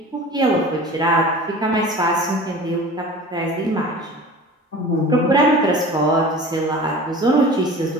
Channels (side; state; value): both; normal; correlation 0.39